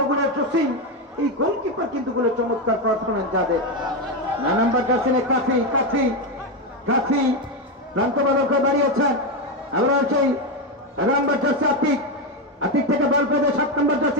জসিম। এই গোলকিপার কিন্তু গুলো চমৎকার পারফরমেন্স যাদের। না নাম্বার জার্সিনে কাফি, কাফি, কাফি প্রান্ত বালক বাড়িয়েছেন। আবার সেই নাম্বার জার্সি আতিক, আতিক থেকে বল পেয়ে 7 নম্বর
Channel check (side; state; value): both; normal; correlation 0.09